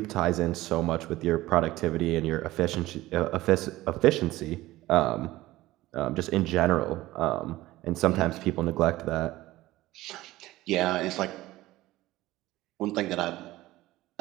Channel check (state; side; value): quieter; left; 17.2 dB